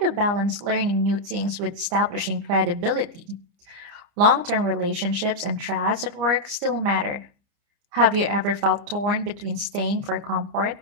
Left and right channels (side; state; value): left; late; 29 ms